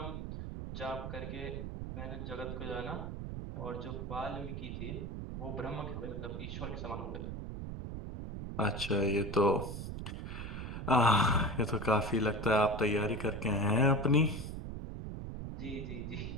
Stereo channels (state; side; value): noise; right; rumble, 6 dB below the sound